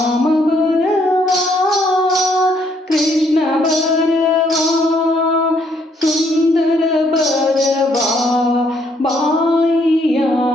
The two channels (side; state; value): both; normal; correlation 0.69